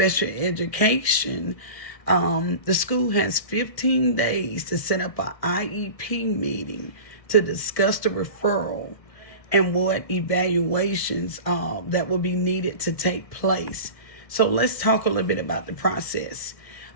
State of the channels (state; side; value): late; right; 1.4 ms